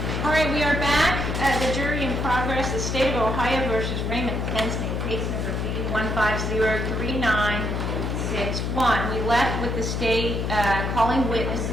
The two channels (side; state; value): left; noise; hum, 1 dB below the sound